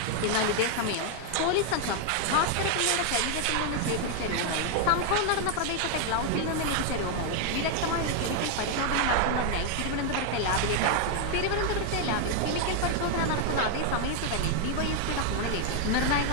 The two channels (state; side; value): different; both; correlation 0.00